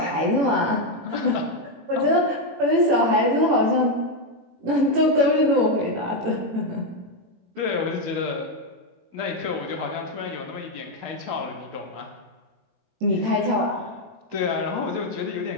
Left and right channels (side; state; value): left; late; 18 ms